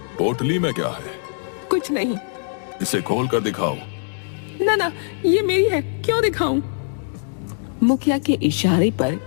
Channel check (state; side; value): silent; right; digital silence